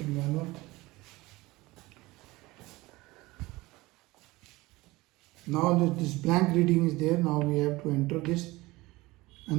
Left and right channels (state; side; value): quieter; left; 20.6 dB